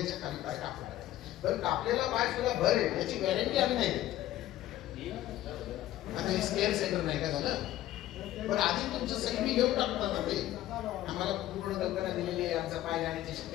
खाली पाय कापून टाकायला. पण कापलेला पाय तुला भरेल याची गॅरंटी आम्ही नाही देत. आता हे स्केअर सेंटर नाही का झालं, पण आधी तुमचं सही मी घेऊन टाकतो ना. ते आम्हाला पूर्ण कल्पना दिलेली आहे, आमचा पाय जाण्याची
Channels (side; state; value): right; quieter; 14.1 dB